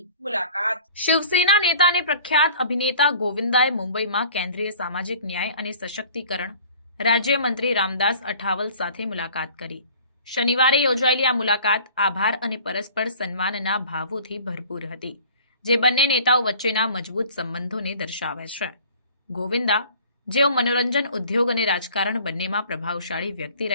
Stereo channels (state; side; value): inverted; both; correlation -0.48